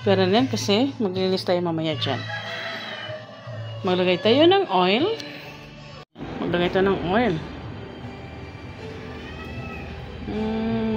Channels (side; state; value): both; identical; correlation 1.00